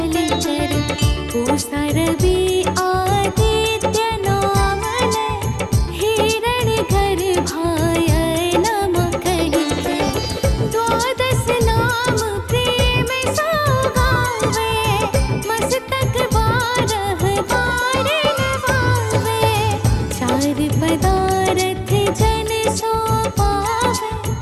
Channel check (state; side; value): identical; both; correlation 1.00